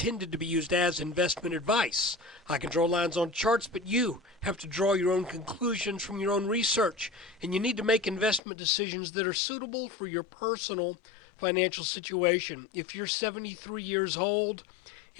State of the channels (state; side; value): drops out; right; at 8.4 s